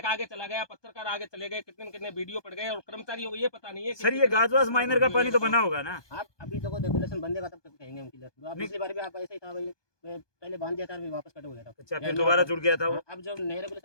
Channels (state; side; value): late; right; 1.2 ms